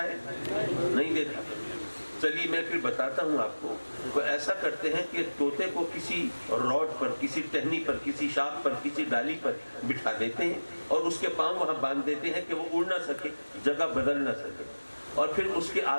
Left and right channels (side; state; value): both; inverted; correlation -1.00